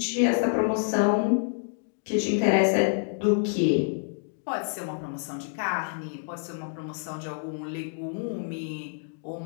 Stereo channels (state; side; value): silent; right; digital silence